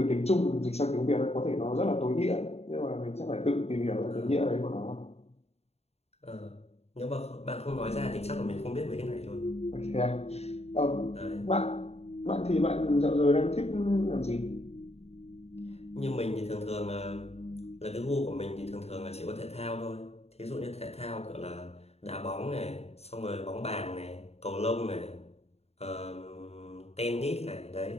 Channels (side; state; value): right; late; 0.30 ms